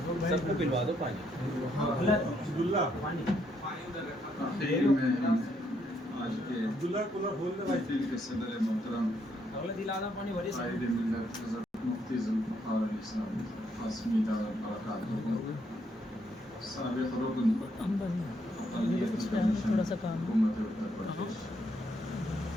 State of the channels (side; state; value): both; normal; correlation 0.74